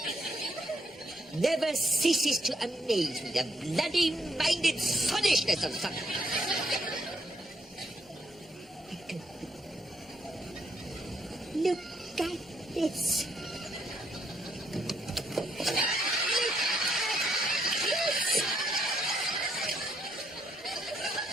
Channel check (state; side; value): normal; both; correlation 0.73